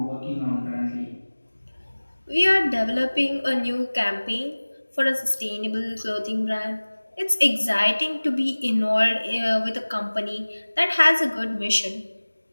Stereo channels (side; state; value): both; inverted; correlation -1.00